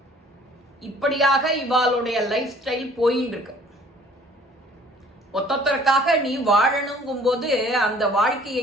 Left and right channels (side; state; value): both; normal; correlation 0.54